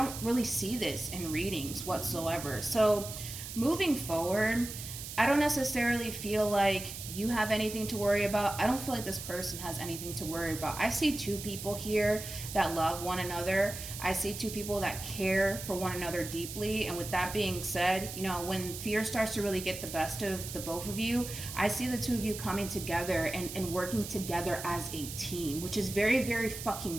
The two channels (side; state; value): right; noise; hiss, 9 dB below the sound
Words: really see this in readings whatsoever. So moving forward, I don't necessarily feel like you have anything to worry about. I don't feel like this person has anything to worry about. I see two people here that love one another. I see two people that care for one another deeply. And with that being said, you know, when fear starts to really get the best of the both of you, I see the two of you coming together and working together as a team, which is very, very